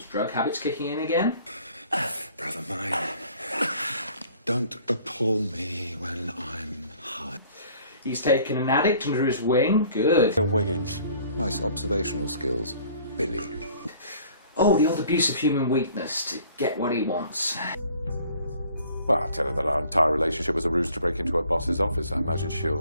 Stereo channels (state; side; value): inverted; both; correlation -0.54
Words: drug habit's kicking in again. Brother mine, don't appall me when I'm high. He's taken an addict under his wing. Good. Wiggins. Nice observational skills, Billy. Oh, the old abuse of human weakness to get what he wants. Well, I tell her that our entire relationship was a ruse to break into her boss's office. I imagine